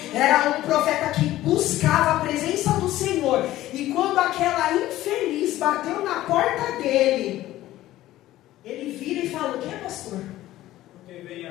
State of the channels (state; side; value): quieter; right; 15.1 dB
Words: Era um profeta que buscava a presença do Senhor. E quando aquela infeliz bateu na porta dele, ele vira e fala: o que, pastor? Porque vem